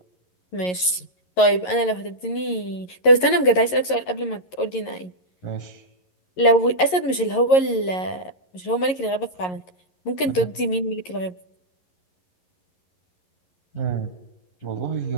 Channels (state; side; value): late; right; 11 ms